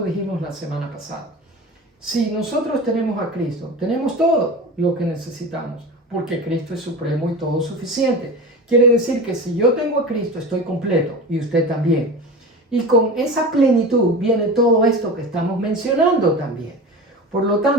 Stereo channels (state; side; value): normal; both; correlation 0.30